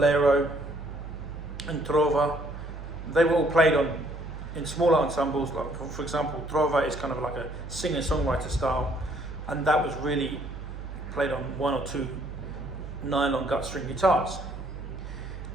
and trova, they were all played in smaller ensembles. Like for example, trova is kind of like a singer-songwriter style, and that was really played on one or two nylon gut string guitars.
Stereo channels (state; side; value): normal; both; correlation 0.64